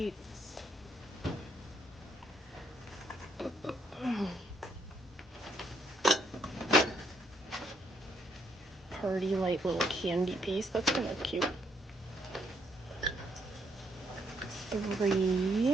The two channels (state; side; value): normal; both; correlation 0.71